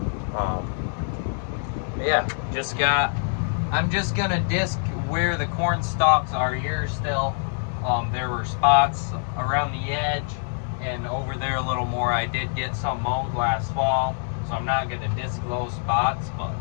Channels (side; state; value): right; silent; digital silence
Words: Yeah, I'm just gonna disc where the corn stalks are here still. There were spots around the edge and over there a little more. I did get some mown last fall, so I'm not gonna disc those spots, but